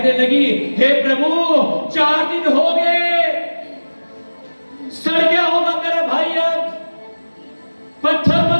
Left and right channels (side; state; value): both; inverted; correlation -1.00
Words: लगी, हे प्रभु, 4 दिन हो गए, सड़ गया होगा मेरा भाई, अब पत्थर